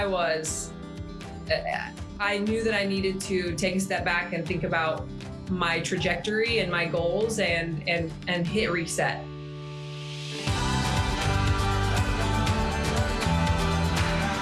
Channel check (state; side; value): identical; both; correlation 1.00